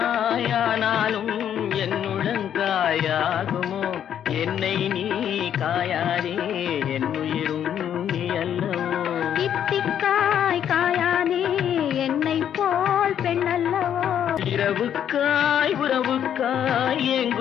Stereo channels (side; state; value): right; quieter; 9.6 dB